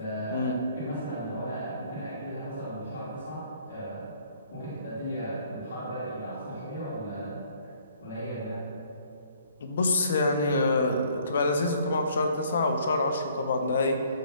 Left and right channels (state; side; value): inverted; both; correlation -0.61